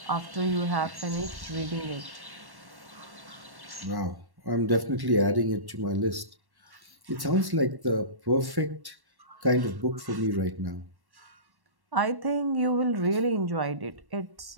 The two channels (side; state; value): left; late; 1.1 ms